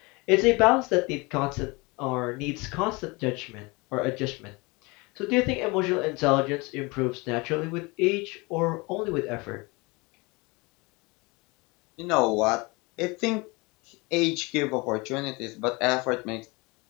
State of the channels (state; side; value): quieter; right; 26.1 dB